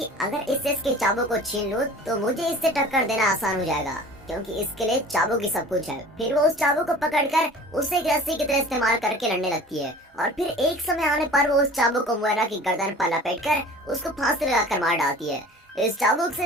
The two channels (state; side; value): normal; both; correlation 0.43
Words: अगर इससे इसके चाबुक को छीन लूं तो मुझे इससे टक्कर देना आसान हो जाएगा, क्योंकि इसके लिए चाबुक ही सब कुछ है। फिर वो उस चाबुक को पकड़कर उसे एक रस्सी की तरह इस्तेमाल करके लड़ने लगती है और फिर एक समय आने पर वो उस चाबुक को मोयरा की गर्दन पर लपेटकर उसको फांसी लगाकर मार डालती है। इस चाबुक से